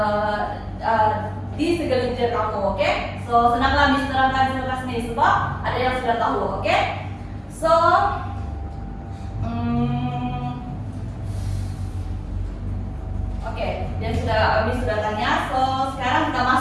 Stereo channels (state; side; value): identical; both; correlation 1.00